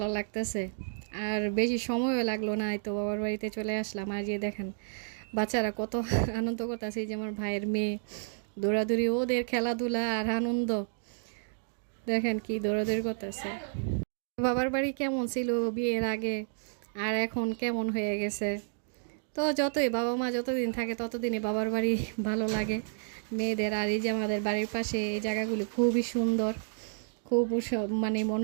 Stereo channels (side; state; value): left; silent; digital silence